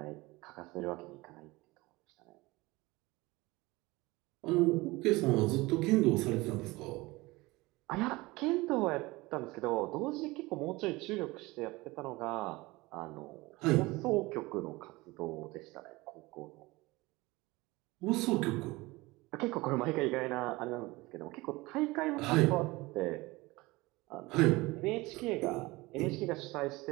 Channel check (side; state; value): left; quieter; 21.6 dB